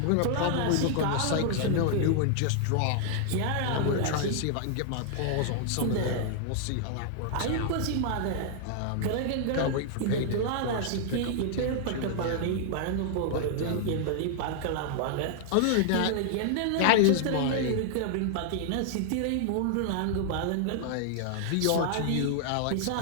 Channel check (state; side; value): different; both; correlation -0.01